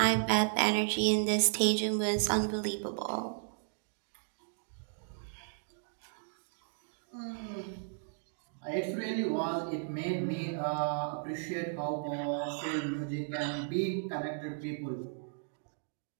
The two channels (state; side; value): silent; left; digital silence